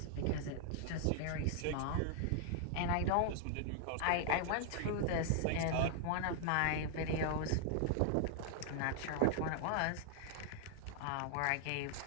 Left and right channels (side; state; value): both; different; correlation 0.00